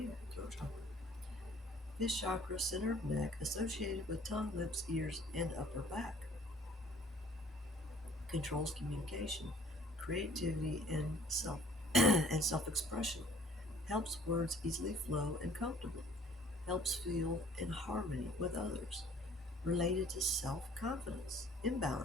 throat chakra. This chakra, center of neck, associated with tongue, lips, ears, and upper back. Controls communication, creativity, and self-expression. Helps words easily flow and comfortably. Helps feel in harmony with others. Related to self-confidence,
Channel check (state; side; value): normal; both; correlation 0.54